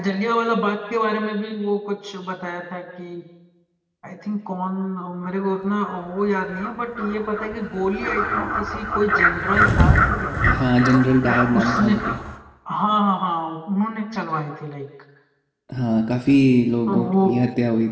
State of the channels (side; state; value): both; identical; correlation 1.00